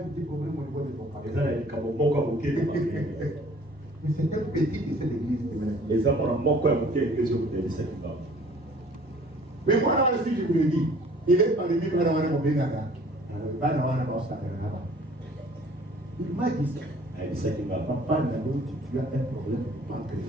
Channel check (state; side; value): normal; both; correlation 0.53